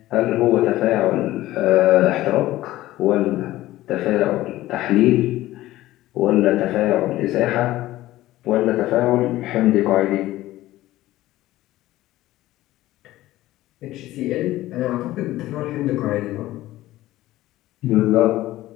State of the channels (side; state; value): right; quieter; 16.0 dB